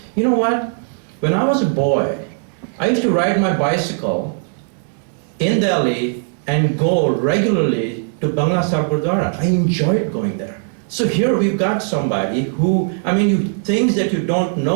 you know what? When I was a boy, I used to ride my bicycle in Delhi and go regularly to Bangla Sahib Gurudwara. I enjoyed going there. So here we've got somebody who, things that you don't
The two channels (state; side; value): silent; left; 67 dB below the other